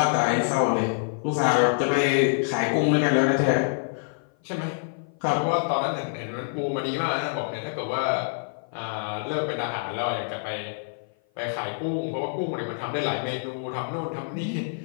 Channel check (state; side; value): silent; right; 55 dB below the other